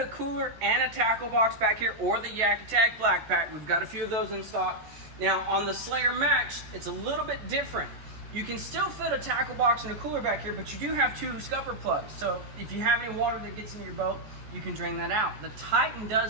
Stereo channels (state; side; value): late; left; 14 ms